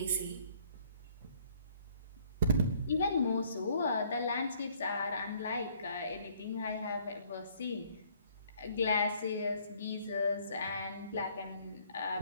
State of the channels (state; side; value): inverted; both; correlation -0.61